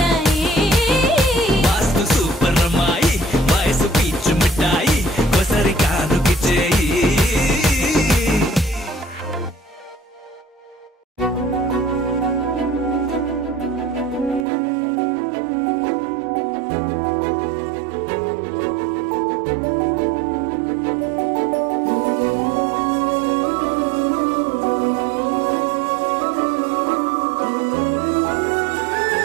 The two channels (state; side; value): drops out; left; at 14.5 s